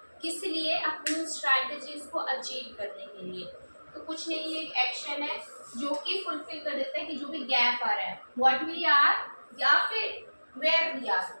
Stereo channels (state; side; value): inverted; both; correlation -1.00